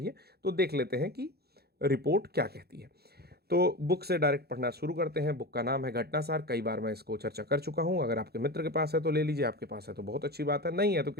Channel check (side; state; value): left; late; 0.46 ms